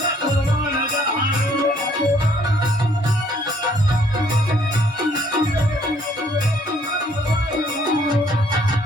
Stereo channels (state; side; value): normal; both; correlation 0.63